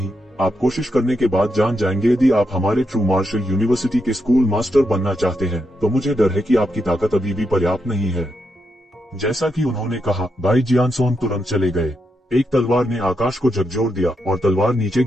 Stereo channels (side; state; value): both; normal; correlation 0.83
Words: आप कोशिश करने के बाद जान जाएंगे। यदि आप हमारे ट्रू मार्शल यूनिवर्सिटी के स्कूल मास्टर बनना चाहते हैं तो मुझे डर है कि आपकी ताकत अभी भी पर्याप्त नहीं है। जैसा कि उन्होंने कहा, बाई जियानसोन तुरंत चले गए। एक तलवार ने आकाश को झकझोर दिया और तलवार नीचे